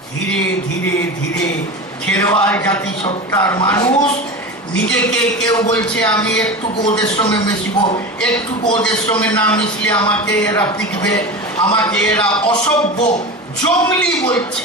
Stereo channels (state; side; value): normal; both; correlation 0.27